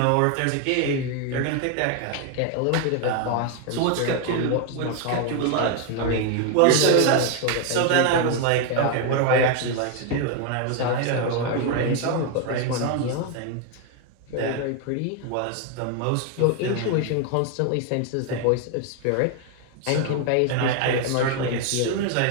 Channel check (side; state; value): both; different; correlation 0.01